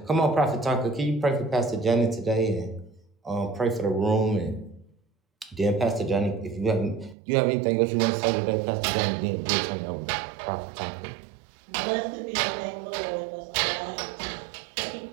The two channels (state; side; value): drops out; left; at 7.2 s